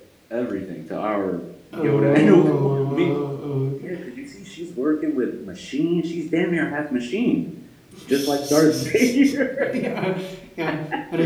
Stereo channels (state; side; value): identical; both; correlation 1.00